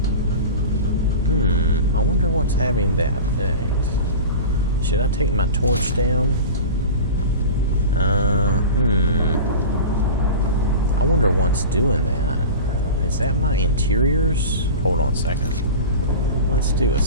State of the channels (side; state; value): both; inverted; correlation -0.32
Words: I wonder what's having that effect. Should I take my torch down? I wonder what's doing that. Is that my interiors? Hold on a second. Let's do a